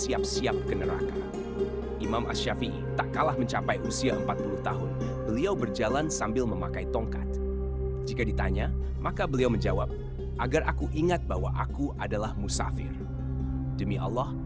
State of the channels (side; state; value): both; identical; correlation 1.00